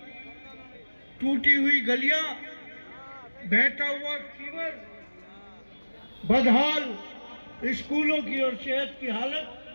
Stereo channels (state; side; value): inverted; both; correlation -1.00